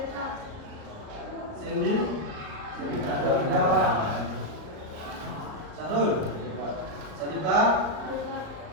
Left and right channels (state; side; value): late; left; 38 ms